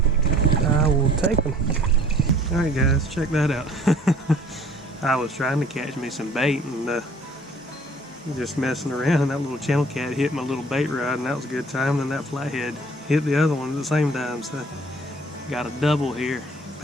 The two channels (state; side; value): normal; both; correlation 0.54